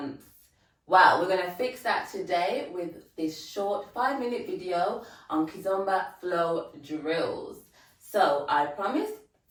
Well, we're going to fix that today with this short 5-minute video on Kizomba flow drills. So I promise,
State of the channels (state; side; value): identical; both; correlation 1.00